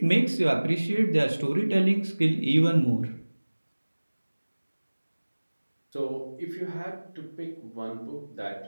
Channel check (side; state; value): both; inverted; correlation -1.00